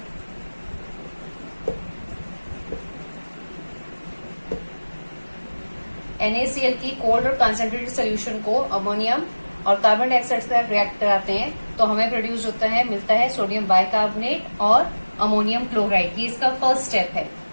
NaCl की कोल्ड और कंसंट्रेटेड सॉल्यूशन को अमोनियम और कार्बन डाइऑक्साइड से रिएक्ट कराते हैं तो हमें प्रोड्यूस होता है, मिलता है सोडियम बाइकार्बोनेट और अमोनियम क्लोराइड। ये इसका फर्स्ट स्टेप है।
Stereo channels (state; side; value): inverted; both; correlation -1.00